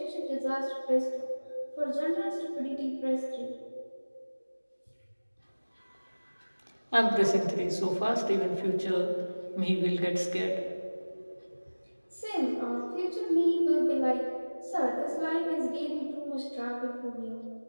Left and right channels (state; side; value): inverted; both; correlation -1.00